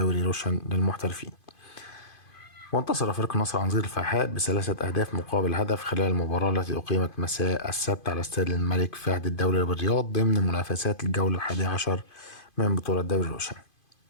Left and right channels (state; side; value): late; right; 2.5 ms